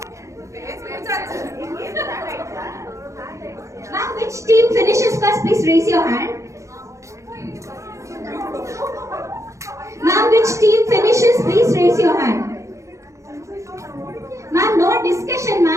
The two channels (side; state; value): left; late; 0.15 ms